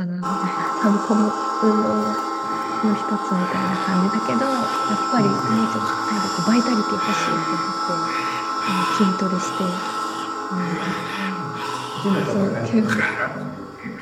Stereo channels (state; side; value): identical; both; correlation 1.00